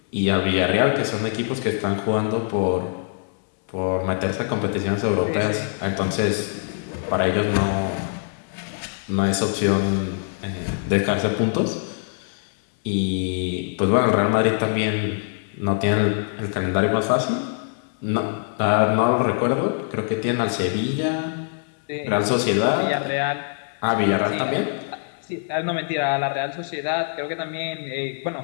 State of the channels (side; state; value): right; silent; 63 dB below the other